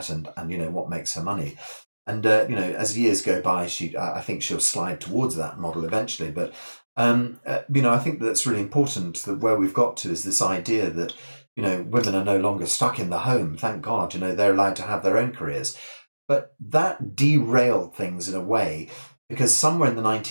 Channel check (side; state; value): both; inverted; correlation -1.00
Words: and what makes her money. And as years go by, I think she'll slide towards that model eventually. But I think that's really important. That where we've got to is this idea that women are no longer stuck in the home. Thank God, they're allowed to have their own careers. But that derailed things in a way, because somewhere in the